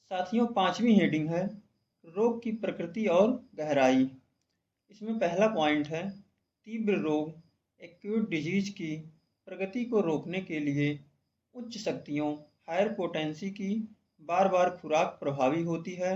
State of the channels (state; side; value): identical; both; correlation 1.00